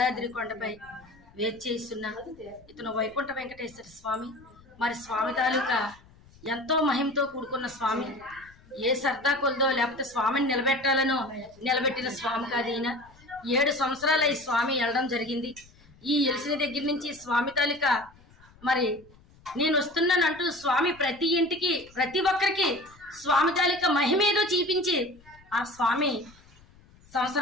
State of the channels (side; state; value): left; noise; rumble, 26 dB below the sound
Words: కొండపై వేచేస్తున్న ఇతను వైకుంఠ వెంకటేశ్వర స్వామి. మరి స్వామి తాలూకా ఎంతో మహిమతో కూడుకున్న స్వామి. ఏ సర్దా కొలదో లేకపోతే స్వామిని నిలబెట్టాలనో నిలబెట్టిన స్వామి కాదు ఈయన. 7 సంవత్సరాలు ఈ స్వామి వెళ్ళడం జరిగింది. ఈ ఎలిసిన దగ్గర నుంచి స్వామి తాలూకా మరి నేను వస్తున్నానంటూ స్వామి ప్రతి ఇంటికి ప్రతి ఒక్కరికి స్వామి తాలూకా మహిమేదో చూపించి ఆ స్వామి